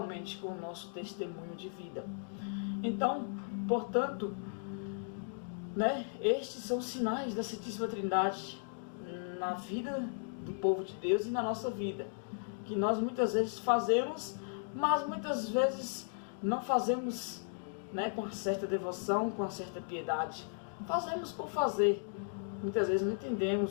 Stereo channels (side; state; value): right; silent; digital silence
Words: com o nosso testemunho de vida. Então, portanto, né? Estes são os sinais da Santíssima Trindade na vida do povo de Deus e na nossa vida, que nós muitas vezes fazemos, mas muitas vezes não fazemos, né, com uma certa devoção, com uma certa piedade. Fazemos por fazer. Muitas vezes não